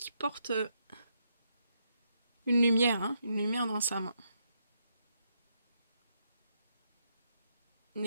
une lumière dans sa main. Une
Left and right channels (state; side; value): inverted; both; correlation -0.79